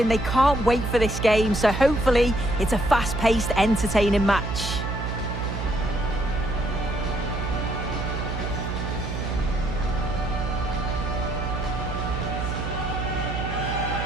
They can't wait for this game, so hopefully it's a fast-paced, entertaining match.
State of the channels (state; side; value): noise; right; hum, 4 dB below the sound